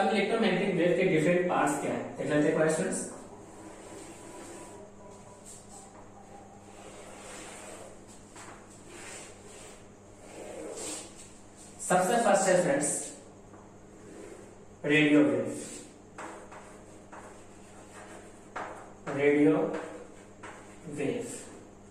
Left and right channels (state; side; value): identical; both; correlation 1.00